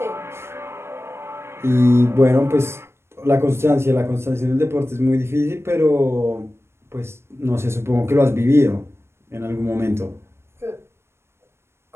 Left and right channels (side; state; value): left; late; 0.12 ms